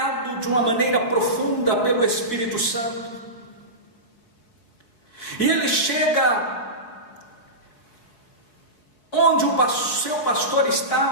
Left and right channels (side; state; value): right; late; 4.3 ms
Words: de uma maneira profunda pelo Espírito Santo. E ele chega onde o seu pastor